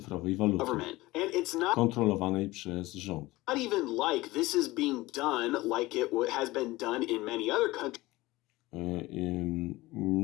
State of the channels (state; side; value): quieter; right; 19.6 dB